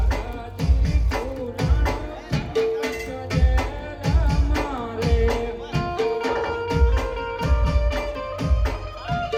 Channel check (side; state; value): both; identical; correlation 1.00